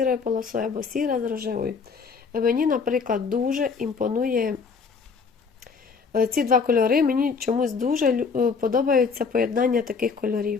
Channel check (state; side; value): quieter; right; 5.3 dB